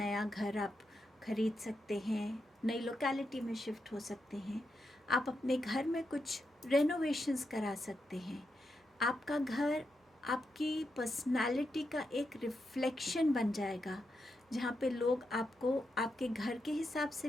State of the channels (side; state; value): both; normal; correlation 0.85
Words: घर आप खरीद सकते हैं, नई लोकेलिटी में शिफ्ट हो सकते हैं। आप अपने घर में कुछ रेनोवेशंस करा सकते हैं। आपका घर आपकी पर्सनालिटी का एक रिफ्लेक्शन बन जाएगा, जहाँ पे लोग आपको आपके घर के हिसाब